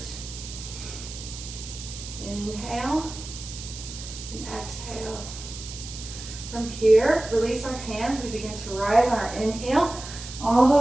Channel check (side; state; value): right; noise; hiss, 11 dB below the sound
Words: Inhale and exhale. From here, release our hands. We begin to rise on our inhale, all